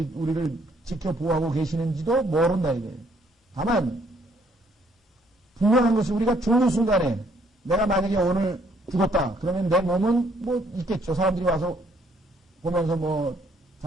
지켜 보호하고 계시는지도 모른다 이거예요. 다만 분명한 것이 우리가 죽는 순간에 내가 만약에 오늘 죽었다. 그러면 내 몸은 뭐 있겠죠. 사람들이 와서 보면서 뭐라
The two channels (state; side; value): normal; both; correlation 0.66